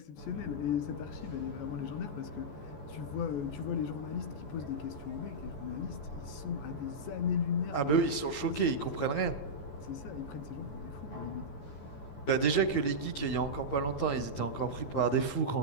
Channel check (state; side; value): late; right; 14 ms